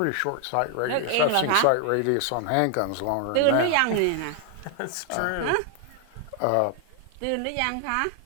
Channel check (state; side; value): different; both; correlation 0.00